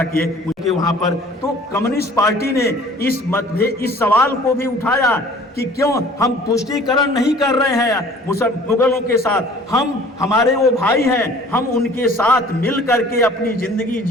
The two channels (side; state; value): both; normal; correlation 0.50